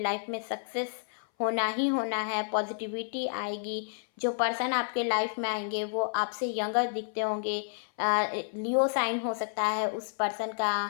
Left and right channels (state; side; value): silent; right; 57 dB below the other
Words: में सक्सेस होना ही होना है, पॉजिटिविटी आएगी। जो पर्सन आपके लाइफ में आएंगे वो आपसे यंगर दिखते होंगे। लियो साइन हो सकता है उस पर्सन